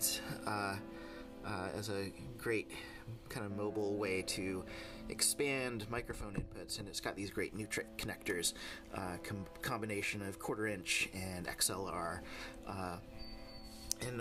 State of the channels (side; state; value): both; identical; correlation 1.00